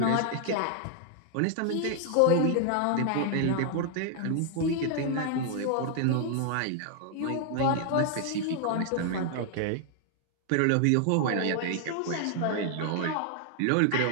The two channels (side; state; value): both; different; correlation 0.00